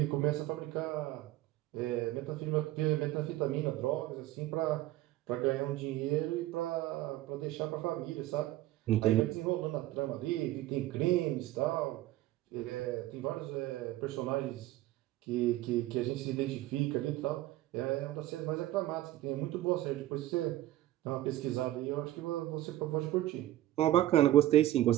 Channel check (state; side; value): quieter; left; 15.1 dB